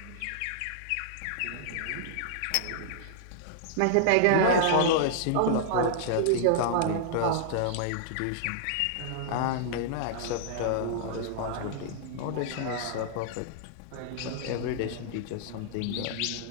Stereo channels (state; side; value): different; both; correlation -0.01